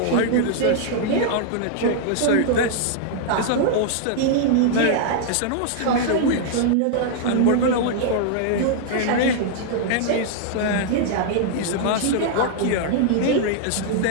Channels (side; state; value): both; different; correlation -0.01